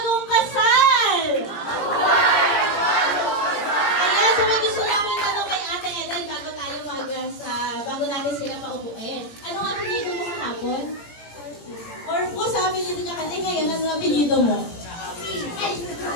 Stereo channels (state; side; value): late; right; 17 ms